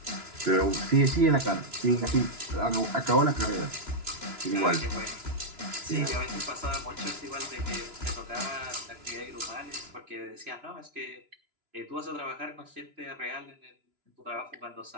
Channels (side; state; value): left; late; 2.9 ms